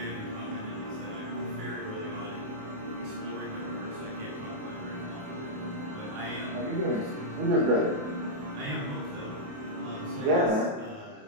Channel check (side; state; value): left; late; 28 ms